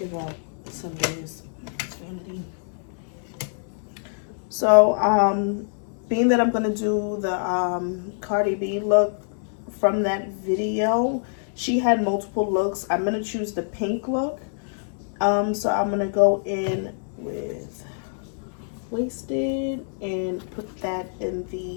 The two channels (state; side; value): silent; right; 62 dB below the other